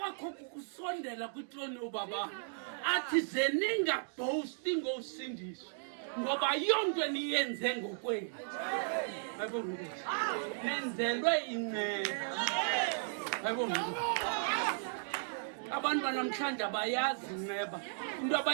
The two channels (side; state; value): left; silent; digital silence